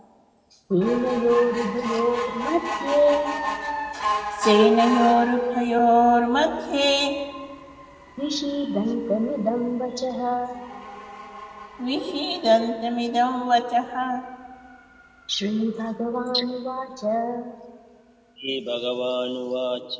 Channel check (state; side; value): identical; both; correlation 1.00